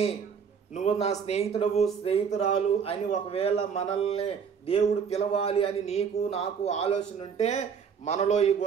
నువ్వు నా స్నేహితుడవు స్నేహితురాలు అని ఒకవేళ మనల్ని దేవుడు పిలవాలి అని నీకు నాకు ఆలోచన ఉంటే మనలో ఈ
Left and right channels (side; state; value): left; quieter; 6.6 dB